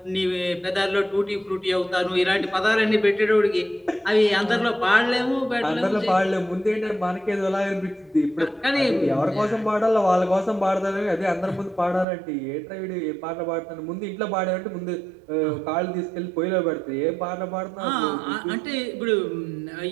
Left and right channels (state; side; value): drops out; left; at 12.1 s